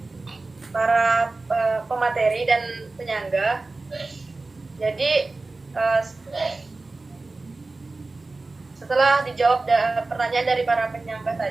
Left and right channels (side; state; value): left; quieter; 3.4 dB